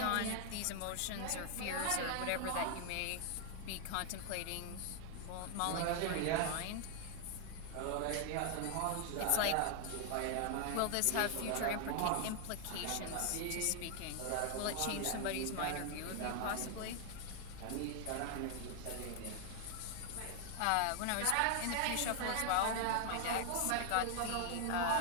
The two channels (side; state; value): both; different; correlation 0.00